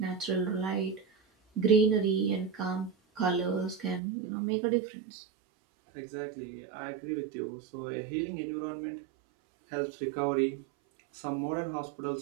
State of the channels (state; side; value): drops out; left; at 4.0 s